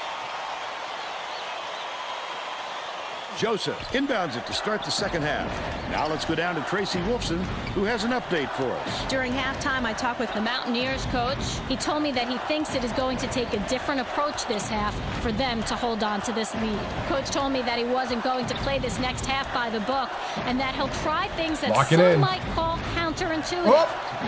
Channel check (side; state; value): both; identical; correlation 1.00